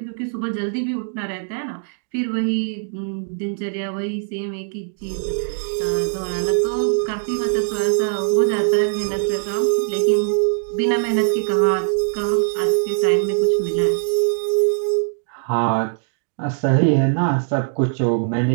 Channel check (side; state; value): left; silent; digital silence